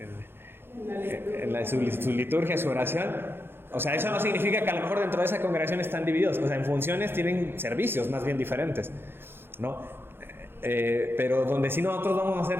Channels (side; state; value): left; late; 0.11 ms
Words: en su liturgia, su oración. O sea, eso no significa que a lo mejor dentro de esa congregación están divididos. O sea, en funciones tienen servicios más bien diferentes, ¿no? Pero donde sí nosotros vamos